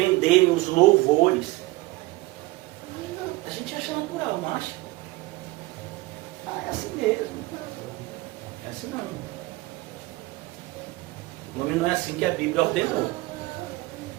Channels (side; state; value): left; quieter; 20.6 dB